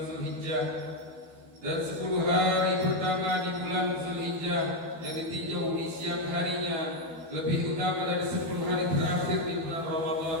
Zulhijjah, dan 10 hari pertama di bulan Zulhijjah yang ditinjau di siang harinya lebih utama dari 10 hari terakhir di bulan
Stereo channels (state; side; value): late; left; 12 ms